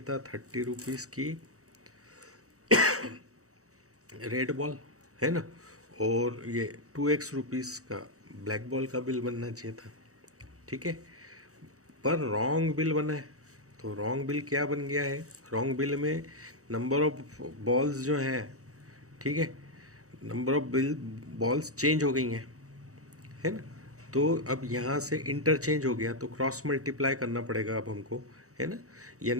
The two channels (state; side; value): late; left; 0.65 ms